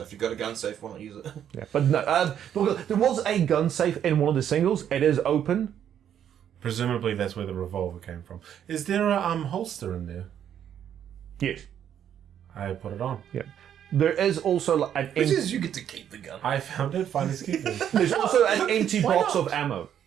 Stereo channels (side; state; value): left; quieter; 9.6 dB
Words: if you've got a gun safe, why not use it? Yeah, but no. Look, there was a gun safe in one of the singles. It is open. Presumably, that's where the revolver came from. Is there a holster in there? Yes. I put it on. Yeah. There is also like an Which is you get to keep the gun. I found it. Finally, keep it. there's also an empty box of ammo.